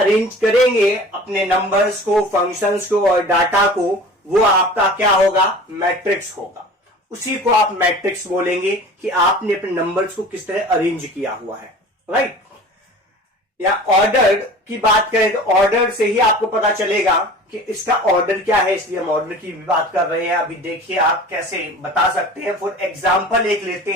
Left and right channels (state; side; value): normal; both; correlation 0.41